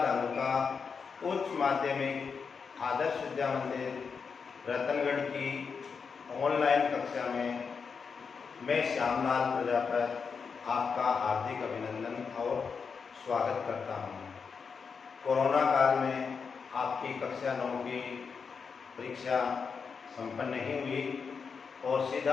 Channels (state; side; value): quieter; right; 5.7 dB